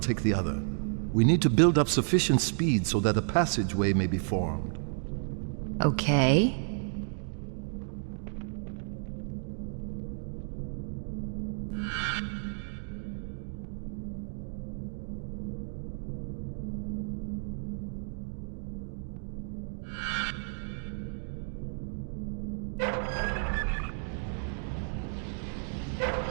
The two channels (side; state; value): left; silent; digital silence